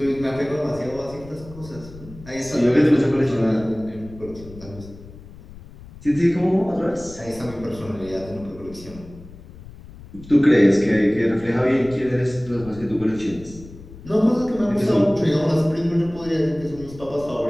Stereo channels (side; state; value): left; noise; rumble, 18 dB below the sound